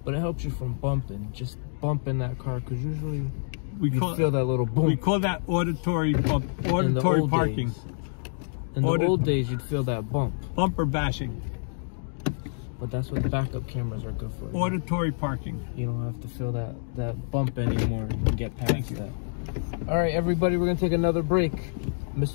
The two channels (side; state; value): right; silent; digital silence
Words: But it helps you from bumping. Just bumping that car, because usually you feel that little boom. We call that auditory bump, auditory parking. In the old days, you'd feel that bump. Bumper bashing. But that's what backup cameras are good for. Auditory parking. You don't have to feel that bump anymore. You can get past that. All right, everybody, we're going to take another break.